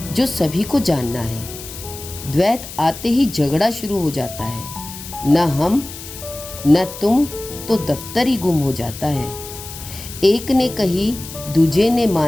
जो सभी को जानना है। द्वैत आते ही झगड़ा शुरू हो जाता है, न हम न तुम, तो दफ्तर ही गुम हो जाता है। एक ने कही दूजे ने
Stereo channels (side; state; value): left; noise; hiss, 12 dB below the sound